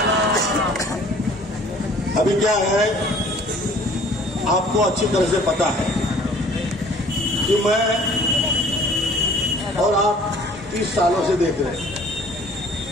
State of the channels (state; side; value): normal; both; correlation 0.52